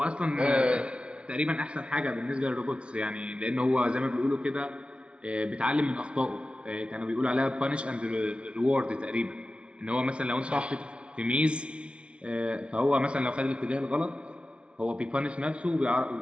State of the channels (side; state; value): left; late; 0.059 ms